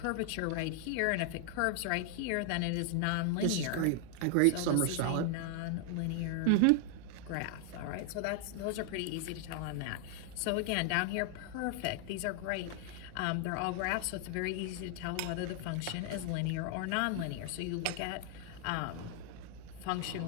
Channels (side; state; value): both; different; correlation 0.00